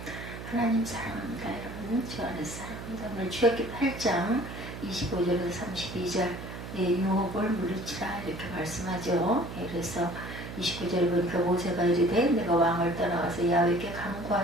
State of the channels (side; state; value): right; noise; hum, 10 dB below the sound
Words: 하나님 사랑합니다. 여러분 주 안에서 사랑합니다. 오늘 출애굽기 8장 25절에서 32절 유혹을 물리치라 이렇게 말씀하죠. 그래서 29절에 보니까 모세가 이르되 내가 왕을 떠나와서 야훼께